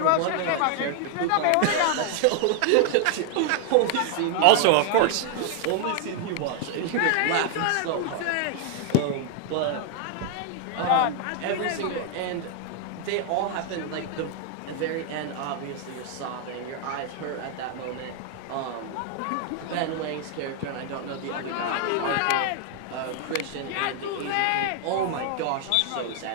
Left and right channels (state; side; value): different; both; correlation 0.00